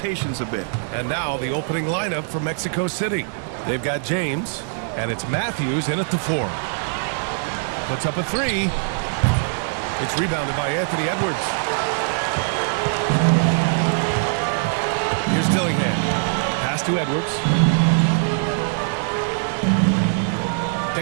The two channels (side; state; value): left; silent; 64 dB below the other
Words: a bit. And now the opening lineup for Mexico City. They've got James, and it's Matthews in at the 4. Puts up a 3. It's rebounded by Anthony Edwards. Here's Dillingham. Pass to Edwards.